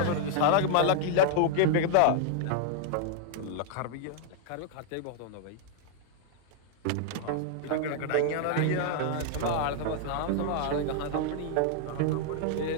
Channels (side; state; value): both; different; correlation 0.00